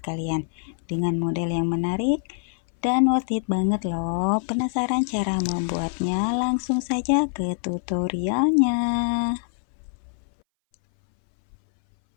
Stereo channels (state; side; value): silent; right; 60 dB below the other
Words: dengan model yang menarik dan worth it banget loh. Penasaran cara membuatnya? Langsung saja ke tutorialnya.